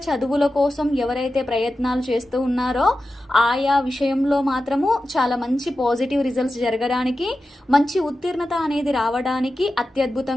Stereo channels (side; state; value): both; normal; correlation 0.92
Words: చదువుల కోసం ఎవరైతే ప్రయత్నాలు చేస్తూ ఉన్నారో ఆయా విషయంలో మాత్రము చాలా మంచి పాజిటివ్ రిజల్ట్స్ జరగడానికి, మంచి ఉత్తీర్ణత అనేది రావడానికి